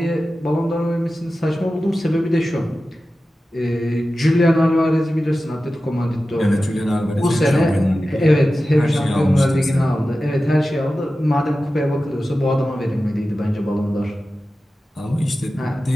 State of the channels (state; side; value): normal; both; correlation 0.94